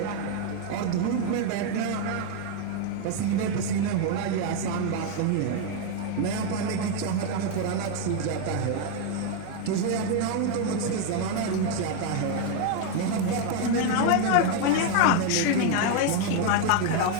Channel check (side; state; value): both; different; correlation 0.01